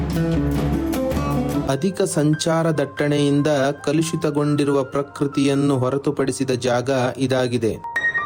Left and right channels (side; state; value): both; identical; correlation 1.00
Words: ಅಧಿಕ ಸಂಚಾರ ದಟ್ಟಣೆಯಿಂದ ಕಲುಷಿತಗೊಂಡಿರುವ ಪ್ರಕೃತಿಯನ್ನು ಹೊರತುಪಡಿಸಿದ ಜಾಗ ಇದಾಗಿದೆ.